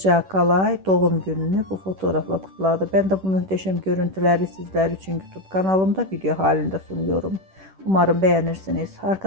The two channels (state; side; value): late; left; 10 ms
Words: Akalay doğum gününü bu fotoğrafla kutladı. Ben de bu muhteşem görüntüleri sizler için YouTube kanalımda video halinde sunuyorum. Umarım beğenirsiniz.